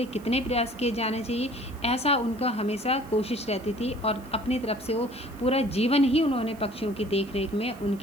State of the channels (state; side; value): noise; right; hiss, 25 dB below the sound